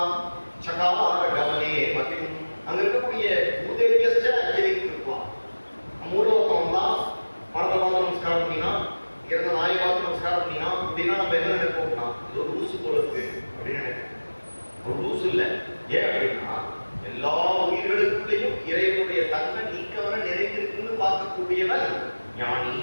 சகார கமனே மதிம். அங்க இருக்கக்கூடிய உதேத்யஸ்ச அஞ்சலிம் கிருத்வா, மூலோகம் தான் பணத்தை பார்த்து நமஸ்காரம் பண்ணினா, இறந்த நாயை பார்த்து நமஸ்காரம் பண்ணினா அப்படின்னா நம்ம என்ன நினைப்போம்னா இது ஒரு லூசு போல இருக்கு அப்படின்னு நினைப்போம். ஒரு லூசு இல்லை. ஏன் அப்படின்னா எல்லா உயிர்களுக்குள்ளேயும் இறைவனுடைய தன்மை நீக்கவன நிறைந்திருக்குன்னு பார்க்கக்கூடியவன் ஞானி.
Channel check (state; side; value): inverted; both; correlation -1.00